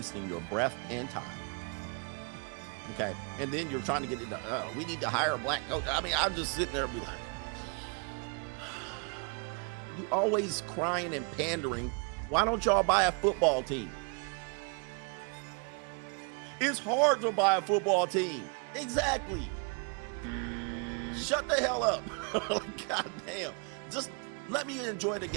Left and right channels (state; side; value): quieter; left; 36.7 dB